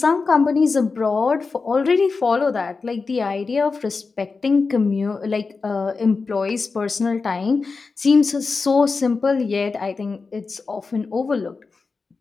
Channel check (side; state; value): right; quieter; 4.4 dB